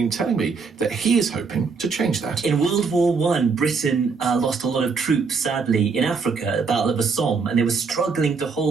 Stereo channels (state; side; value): quieter; left; 5.0 dB